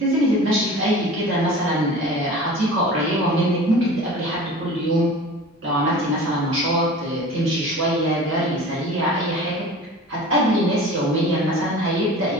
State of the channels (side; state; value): both; normal; correlation 0.39